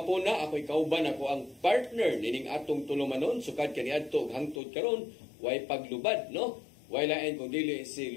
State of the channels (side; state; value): right; drops out; at 4.6 s